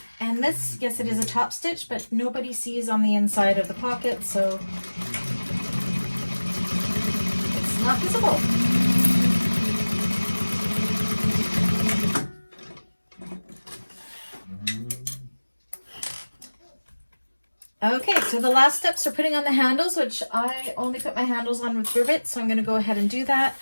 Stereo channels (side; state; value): both; inverted; correlation -1.00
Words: And this, yes, it is a top stitch, but nobody sees on the inside of the pocket, so it's not visible. Okay, so the last steps are putting on the handles, which I only put my handles on with rivets, so I'm going to go ahead and do that.